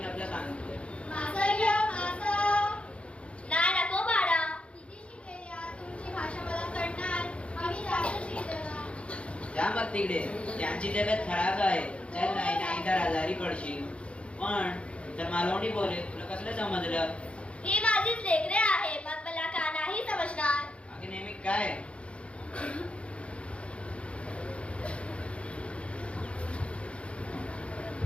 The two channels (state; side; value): late; right; 0.060 ms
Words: मॅपला सांगतो. नाही नको बाळा. तुमची भाषा मला कळणार. आम्ही जास्त शिकलो. जा मग तिकडे. त्यांची तब्येत खराब आहे. चल, नाही तर आजारी पडशील. पण तर मालवणी बोले, तुला कसलं समजलं? ही माझीच लेकरे आहे, मग मला का नाही समजणार? बाकी नेहमी काय?